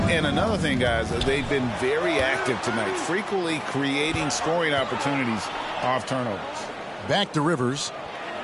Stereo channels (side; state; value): both; identical; correlation 1.00